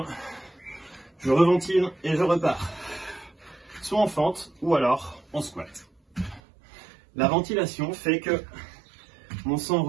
je reventile et je repars. Soit en fente, ou alors en squat. La ventilation fait que mon sang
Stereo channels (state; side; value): drops out; left; at 6.4 s